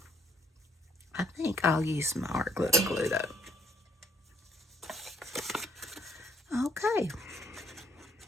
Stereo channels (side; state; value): both; normal; correlation 0.67